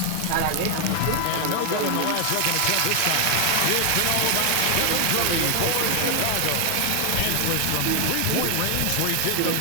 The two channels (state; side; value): different; both; correlation 0.00